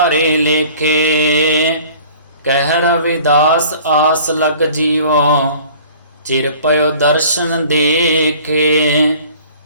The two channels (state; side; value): inverted; both; correlation -0.49